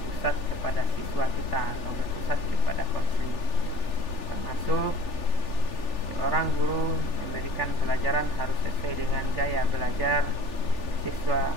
kepada siswa kita atau berpusat kepada konseling, termasuk seorang guru memberikan pelajaran harus sesuai dengan gaya belajar siswa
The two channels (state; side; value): late; right; 3.4 ms